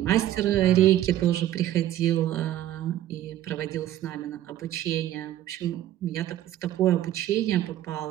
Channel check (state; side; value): quieter; left; 12.9 dB